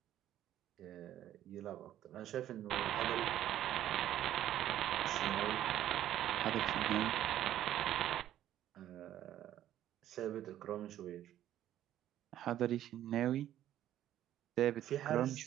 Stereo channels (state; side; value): quieter; left; 12.1 dB